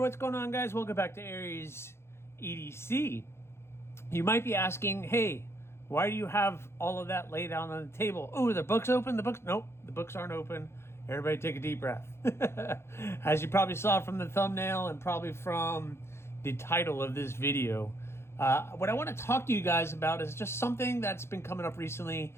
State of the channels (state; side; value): late; right; 0.12 ms